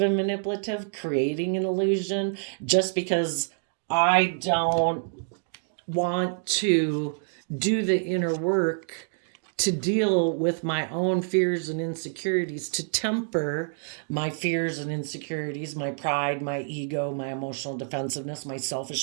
and manipulative, creating an illusion just because I don't want to do the inner work to deal with my own fears and insecurities, to temper my fears and insecurities, my pride, my ego, my emotional defensiveness, my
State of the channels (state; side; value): silent; left; digital silence